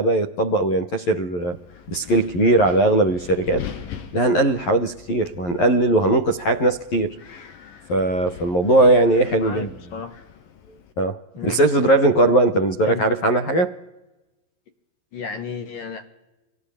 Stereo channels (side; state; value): right; late; 11 ms